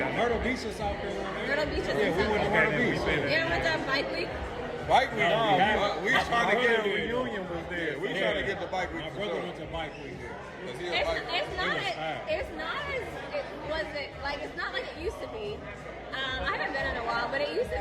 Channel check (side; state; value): both; identical; correlation 1.00